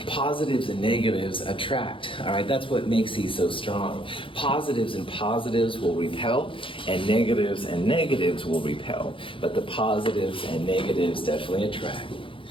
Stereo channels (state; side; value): late; right; 0.25 ms